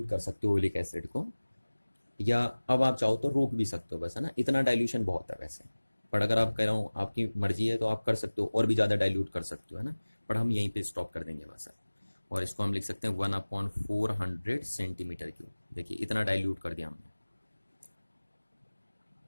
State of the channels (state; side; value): inverted; both; correlation -1.00